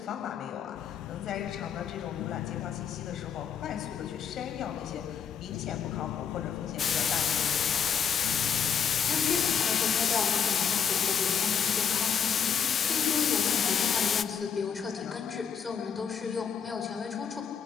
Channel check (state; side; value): quieter; right; 7.4 dB